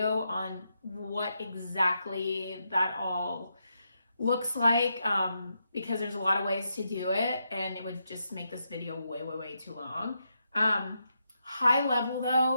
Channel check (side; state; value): both; inverted; correlation -0.83